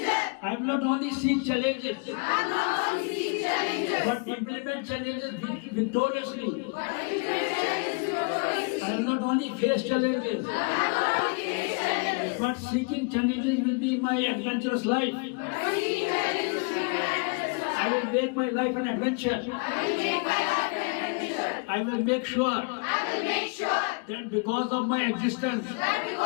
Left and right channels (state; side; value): quieter; right; 34.0 dB